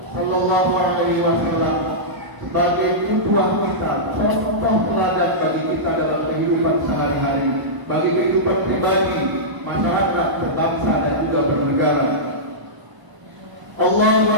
sallallahu alaihi wasallam sebagai qudwah kita, contoh teladan bagi kita dalam kehidupan sehari-hari, bagi kehidupan pribadi, masyarakat, berbangsa dan juga bernegara. Allahu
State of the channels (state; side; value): late; left; 1.0 ms